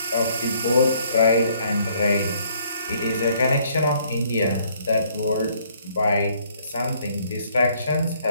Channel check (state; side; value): inverted; both; correlation -0.64